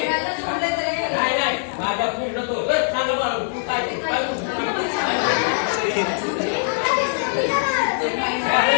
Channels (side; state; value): right; silent; 64 dB below the other